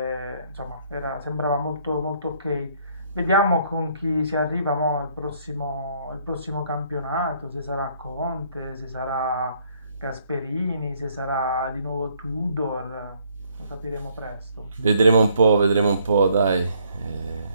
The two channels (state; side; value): inverted; both; correlation -0.66